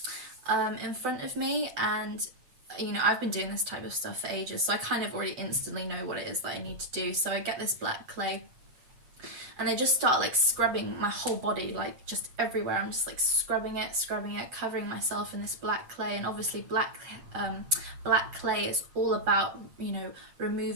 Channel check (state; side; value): late; left; 7.9 ms